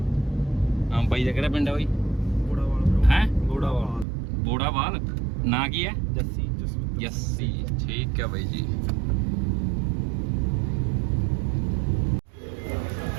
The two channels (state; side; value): drops out; left; at 4.0 s